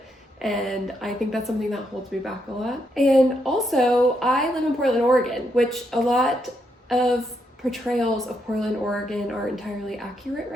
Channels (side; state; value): both; normal; correlation 0.78